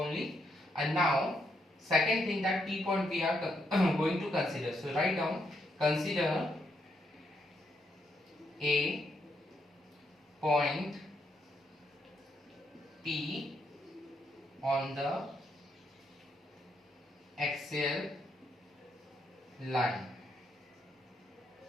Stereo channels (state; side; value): normal; both; correlation 0.78